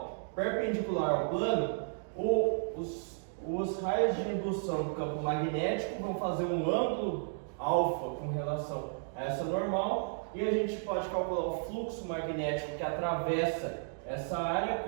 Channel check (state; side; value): silent; left; digital silence